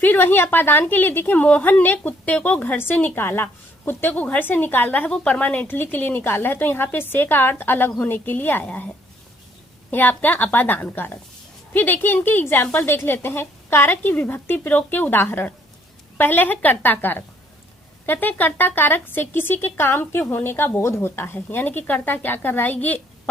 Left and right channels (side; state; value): both; normal; correlation 0.65